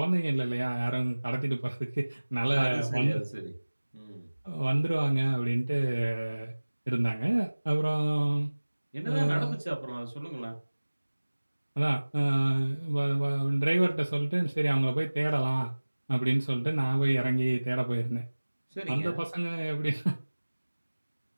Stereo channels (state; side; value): inverted; both; correlation -1.00